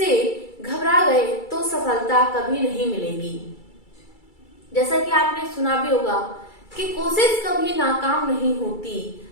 घबरा गए तो सफलता कभी नहीं मिलेगी। जैसा कि आपने सुना भी होगा कि कोशिश कभी नाकाम नहीं होती,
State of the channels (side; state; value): right; late; 2.3 ms